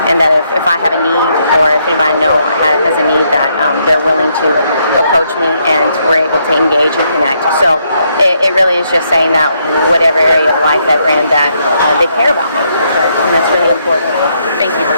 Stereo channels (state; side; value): inverted; both; correlation -0.75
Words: and that if I have a need, or if anybody I know has a need, that they're willing to approach me, and we're able to engage and connect. So it really is just saying that whatever area of life that we're in, that they care about me, and that's really important. Thank you